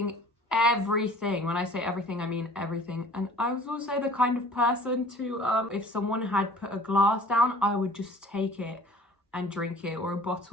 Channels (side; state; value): both; normal; correlation 0.49